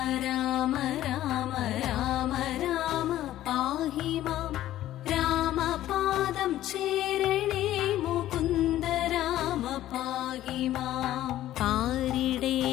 രാമ രാമ രാമ രാമ പാഹി മാം രാമപാദം ചേരണേ മുകുന്ദ രാമ പാഹി മാം പാരിടേ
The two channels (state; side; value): quieter; right; 13.6 dB